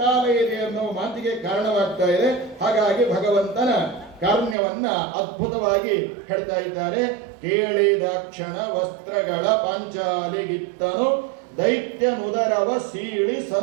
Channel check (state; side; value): drops out; left; at 4.5 s